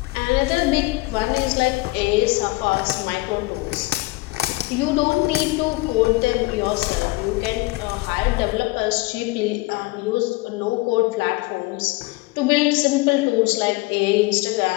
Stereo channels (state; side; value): quieter; right; 22.5 dB